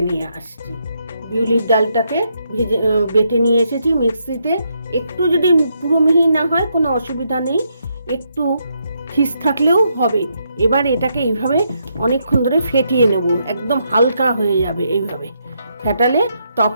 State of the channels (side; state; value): both; inverted; correlation -0.78